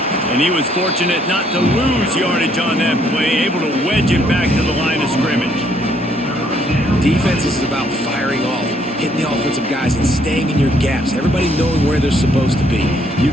And he was fortunate not to lose yardage on that play, able to wedge it back to the line of scrimmage. Defense is about firing off, hitting the offensive guys, and staying in your gaps. Everybody knowing where they're supposed to be. You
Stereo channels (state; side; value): normal; both; correlation 0.68